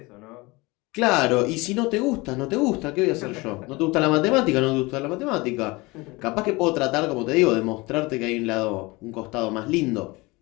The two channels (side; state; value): right; quieter; 23.6 dB